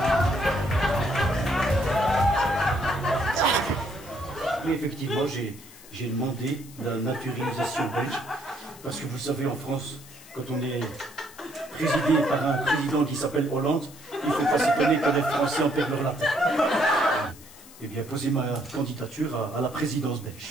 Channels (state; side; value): noise; left; hiss, 20 dB below the sound